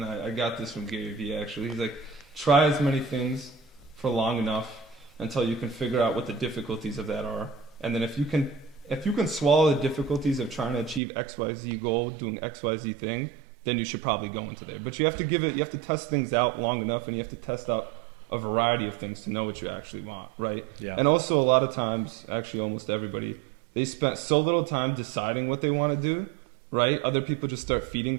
I got this from Gary Vee actually. He's like, try as many things for long enough until you can figure out what the difficulties of that are, and then if you can swallow the difficulties of trying to achieve XYZ goal, doing XYZ thing, then you should probably go into there. But you have to test things out long enough, and you have to test out a variety of things to know what you actually want, right? Yeah. And also a lot of times, actually almost everybody, they spent so little time deciding what they want to do, right? Other people just start feeding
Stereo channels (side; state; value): left; drops out; at 11.0 s